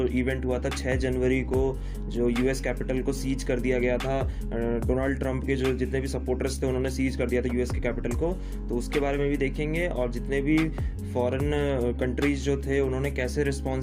इवेंट हुआ था 6 जनवरी को, जो यूएस कैपिटल को सीज कर दिया गया था, डोनाल्ड ट्रंप के जो जितने भी सपोर्टर्स थे उन्होंने सीज कर दिया था यूएस के कैपिटल को, तो उसके बारे में भी देखेंगे। और जितने भी फॉरेन कंट्रीज जो थे उन्होंने कैसे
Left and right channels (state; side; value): identical; both; correlation 1.00